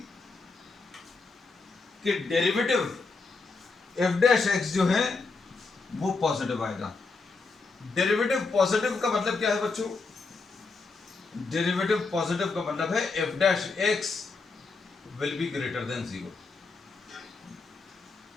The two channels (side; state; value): right; quieter; 4.1 dB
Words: कि डेरिवेटिव एफ डैश एक्स जो है वो पॉजिटिव आएगा। डेरिवेटिव पॉजिटिव का मतलब क्या है बच्चों, डेरिवेटिव पॉजिटिव का मतलब है F dash x will be greater than 0।